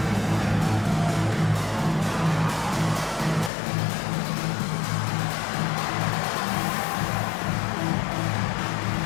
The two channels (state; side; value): drops out; right; at 3.5 s